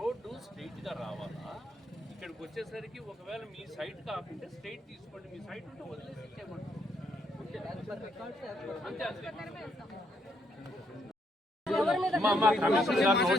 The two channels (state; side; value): normal; both; correlation 0.74